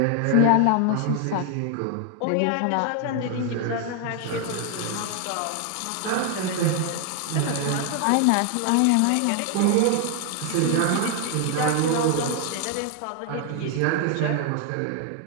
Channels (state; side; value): different; both; correlation 0.00